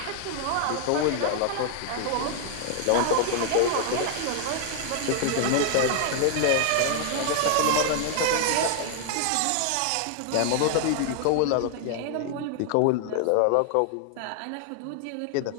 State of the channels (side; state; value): both; different; correlation 0.00